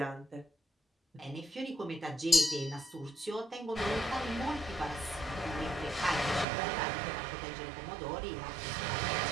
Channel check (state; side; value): drops out; left; at 6.5 s